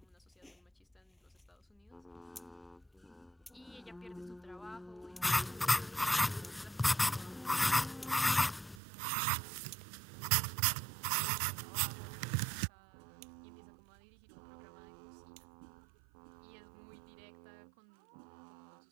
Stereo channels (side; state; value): left; drops out; at 8.8 s